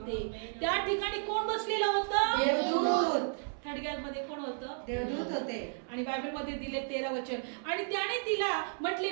त्या ठिकाणी कोण बसलेलं होतं? देवदूत. थडग्यामध्ये कोण होतं? देवदूत होते. आणि बायबलमध्ये दिले 13 वचन, आणि त्याने तिला म्हटले,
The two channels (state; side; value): silent; left; 56 dB below the other